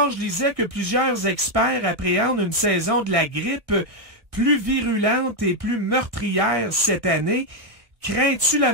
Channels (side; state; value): left; late; 1.7 ms